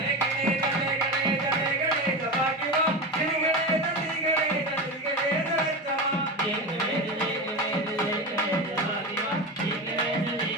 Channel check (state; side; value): normal; both; correlation 0.21